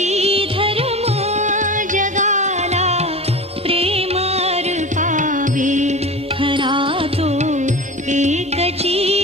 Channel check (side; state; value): both; normal; correlation 0.32